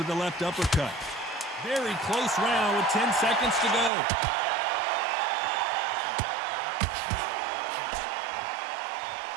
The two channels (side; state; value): left; drops out; at 3.9 s